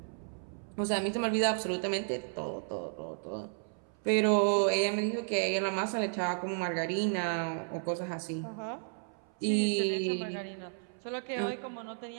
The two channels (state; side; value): silent; left; 56 dB below the other